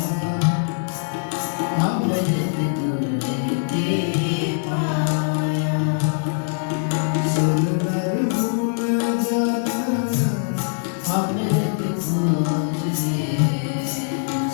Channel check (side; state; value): right; silent; digital silence